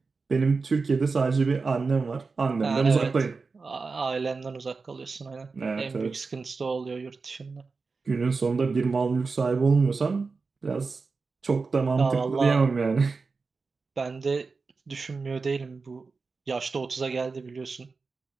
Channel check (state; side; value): quieter; left; 4.4 dB